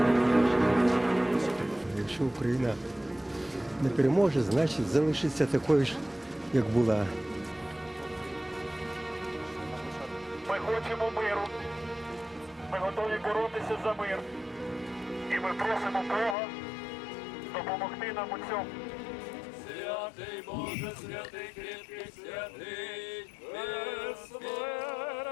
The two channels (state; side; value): drops out; right; at 16.4 s